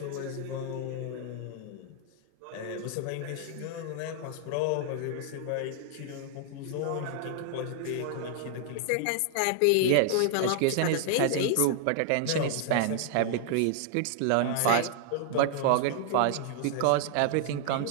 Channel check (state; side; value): different; both; correlation 0.00